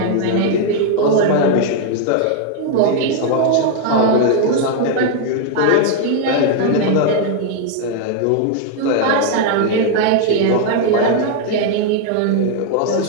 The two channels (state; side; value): different; both; correlation 0.00